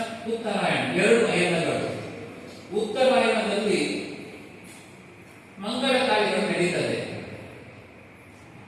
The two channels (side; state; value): both; identical; correlation 1.00